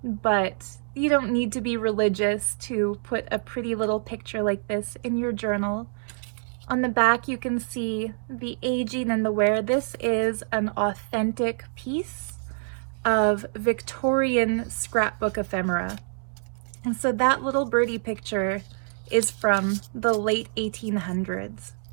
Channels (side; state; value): left; silent; digital silence